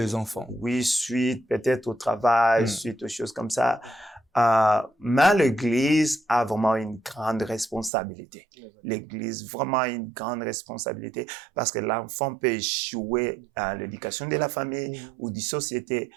enfants. Oui, suite peut-être au travail, suite aux choses comme ça. Mais l'église a vraiment une grande responsabilité. L'église vraiment une grande responsabilité parce que l'enfant peut échouer à l'éducation de la famille ou de la société,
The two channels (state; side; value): drops out; left; at 7.9 s